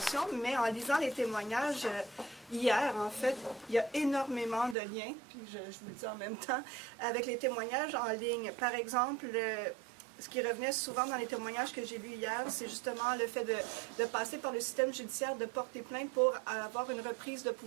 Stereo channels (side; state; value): left; drops out; at 4.8 s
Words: mais en lisant les témoignages... Hier, en fait, il y a énormément de liens, puis je vous le dis en même temps, avec les témoignages en ligne. Par exemple, ce qui revenait souvent dans les témoignages que j'ai lus hier, c'est justement le fait de passer par le système judiciaire, de porter plainte pour avoir une reprise de